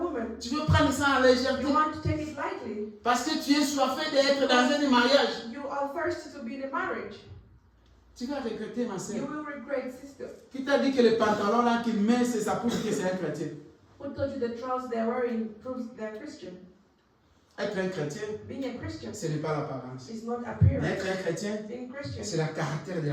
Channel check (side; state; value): both; identical; correlation 1.00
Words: Tu veux prendre ça en légèreté. You want to take it lightly. Parce que tu es soifé d'être dans un mariage. You are thirsty to be in a marriage. Tu vas regretter, ma You soeur. will regret, sister. Qui t'a dit que le pantalon là qu'il met, c'est ça prouve que c'est un chrétien? Who told you the trousers they're wearing proves they're Christian? Être un chrétien, Being a Christian ce n'est pas l'apparence. is not Mais appearance. être un chrétien, Being Christian c'est le caractère de la